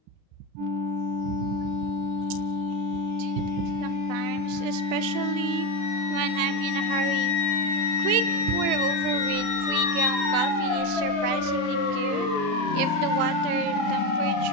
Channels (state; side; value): late; left; 35 ms